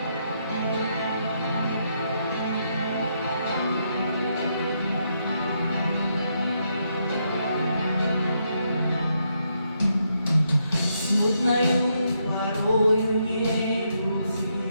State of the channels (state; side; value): inverted; both; correlation -0.78